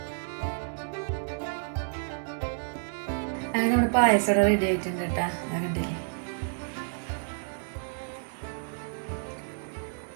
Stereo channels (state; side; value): silent; left; 58 dB below the other